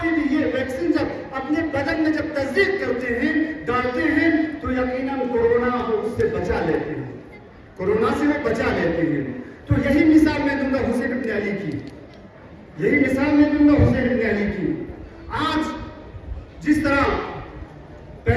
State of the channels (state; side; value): identical; both; correlation 1.00